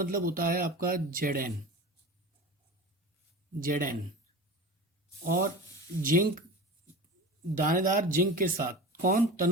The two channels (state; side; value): normal; both; correlation 0.32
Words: होता है आपका Zn और जिंक, दानेदार जिंक के साथ कौन,